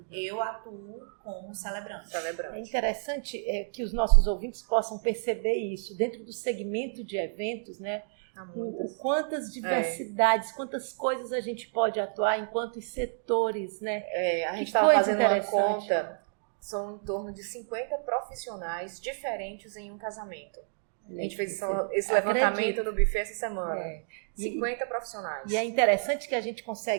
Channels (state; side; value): silent; left; digital silence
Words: eu atuo como celebrante. É interessante que os nossos ouvintes possam perceber isso, dentro do segmento de eventos, né? Quantas diversidades, quantas coisas a gente pode atuar em quantos setores, né? A gente estava fazendo uma conta, são em torno de 50 profissionais diferentes em um casamento. A gente fez esse levantamento no buffet essa semana. 50 profissionais. E é interessante que a gente